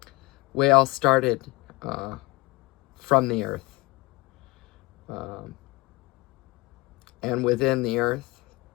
we all started from the earth. And within the earth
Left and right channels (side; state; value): right; quieter; 22.8 dB